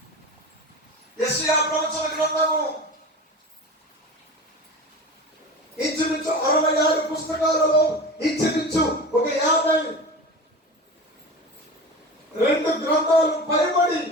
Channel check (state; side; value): normal; both; correlation 0.31